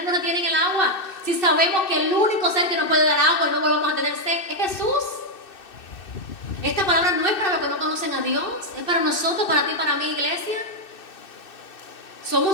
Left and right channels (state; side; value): late; right; 2.6 ms